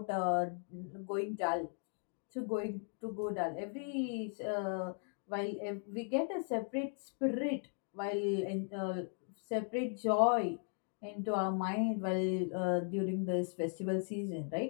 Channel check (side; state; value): right; silent; 53 dB below the other